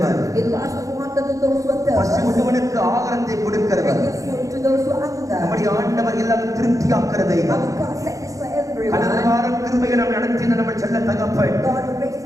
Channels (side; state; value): left; late; 0.16 ms